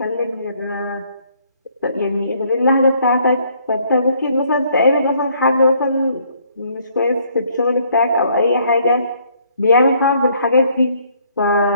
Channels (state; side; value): inverted; both; correlation -0.65